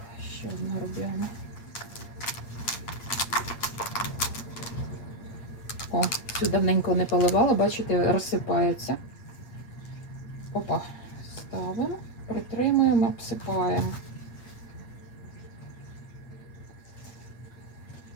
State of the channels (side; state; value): right; late; 8.6 ms